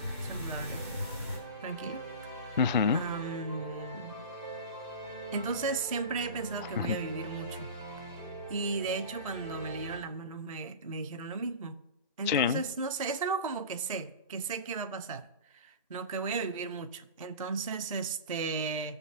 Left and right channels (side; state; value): both; inverted; correlation -0.31